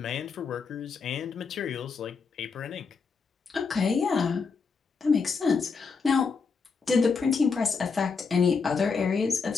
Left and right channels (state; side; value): quieter; right; 5.1 dB